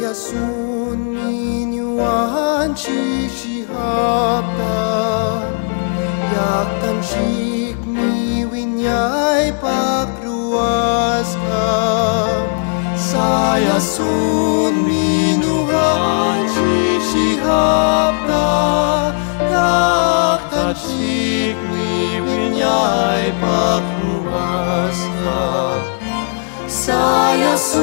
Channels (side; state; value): right; silent; 68 dB below the other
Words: Yasun minuan shihapta Yak tanshik mi winyay pakruas ka Sayasun minuan shihapta Yak tanshik mi winyay pakruas ka